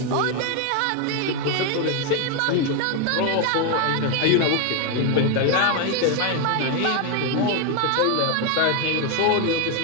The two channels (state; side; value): different; both; correlation 0.01